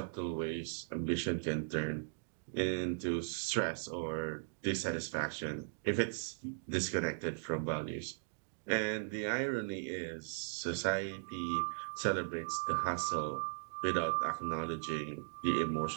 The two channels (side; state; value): left; silent; digital silence